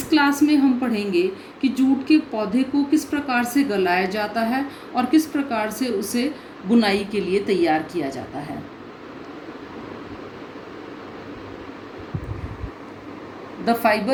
क्लास में हम पढ़ेंगे कि जूट के पौधे को किस प्रकार से गलाया जाता है और किस प्रकार से उसे बुनाई के लिए तैयार किया जाता है। द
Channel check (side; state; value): both; identical; correlation 1.00